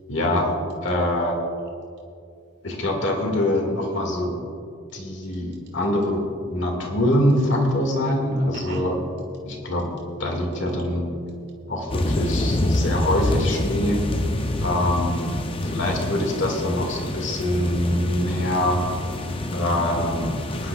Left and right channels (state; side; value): normal; both; correlation 0.56